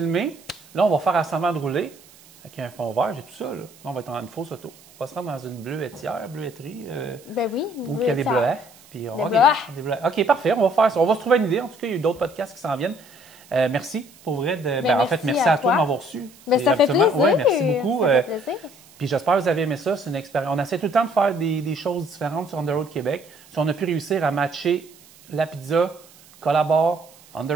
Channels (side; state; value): right; noise; hiss, 25 dB below the sound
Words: Là, on va faire assemblement de rouler avec un fond vert. J'ai tout ça, là. Là, on va être en une fausse auto. On va se rendre dans une bleuetterie, Ben oui. où il y a des bleuets. Puis on Des va bleuets. des bleuets. OK, parfait. On va faire ça. On va se trouver une idée. En tout cas, il y a eu d'autres podcasts qui s'en viennent. Merci pour vrai. En fait, merci à toi de m'avoir reçu. Ben, C'est ça fait absolument- plaisir. Ouais, merci beaucoup. Ça fait plaisir. Puis j'espère que vous avez aimé ça. C'est une expérience. On essaie tout le temps de faire des choses différentes sur On the Road Québec. Si on a pu réussir à matcher la pizza, Collabore, On the